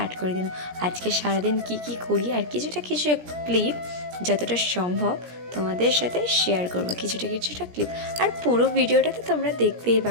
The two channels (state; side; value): late; left; 17 ms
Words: করে দিলাম। আজকে সারাদিন কি কি করি আর কিছু ক্লিপ যতটা সম্ভব তোমাদের সাথে শেয়ার করবো, কিছুটা ক্লিপ। আর পুরো ভিডিওটা তো তোমরা দেখতেই